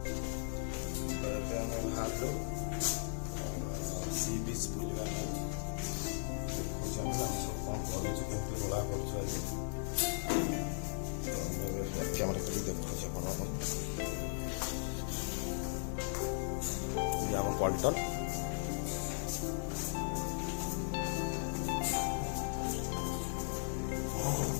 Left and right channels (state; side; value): silent; right; 53 dB below the other